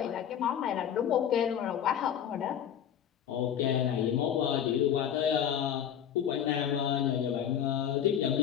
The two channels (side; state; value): right; quieter; 9.4 dB